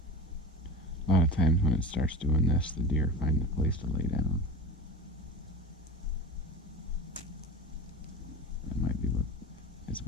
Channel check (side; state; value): both; normal; correlation 0.31